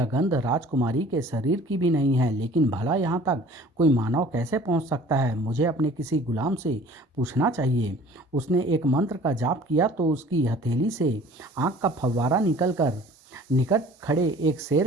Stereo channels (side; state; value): both; normal; correlation 0.49